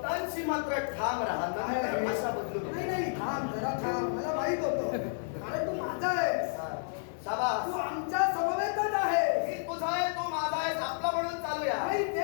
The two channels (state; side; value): silent; right; 57 dB below the other